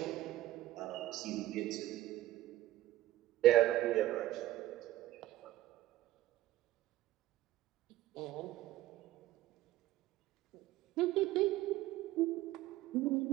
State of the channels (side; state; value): left; quieter; 15.1 dB